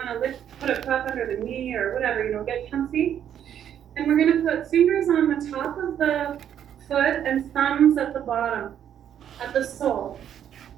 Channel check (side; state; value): left; quieter; 9.7 dB